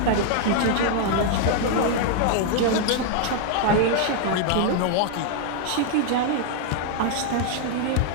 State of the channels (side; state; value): both; different; correlation 0.00